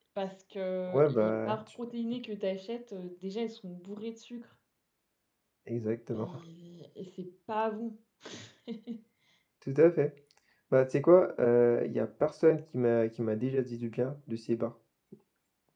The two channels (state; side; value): identical; both; correlation 1.00